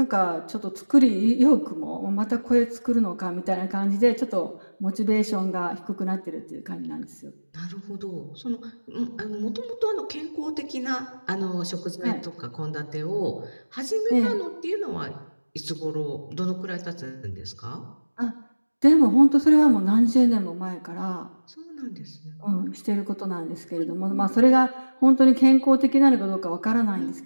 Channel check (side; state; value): both; inverted; correlation -1.00